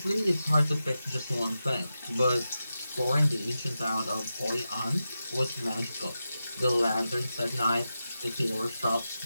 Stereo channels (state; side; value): inverted; both; correlation -0.91